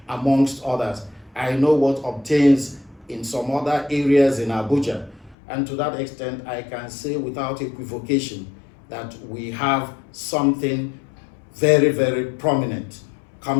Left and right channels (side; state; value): right; drops out; at 5.4 s